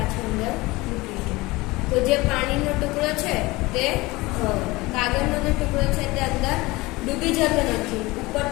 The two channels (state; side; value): quieter; right; 21.6 dB